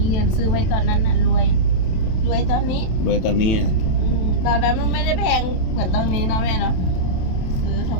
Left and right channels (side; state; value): right; late; 27 ms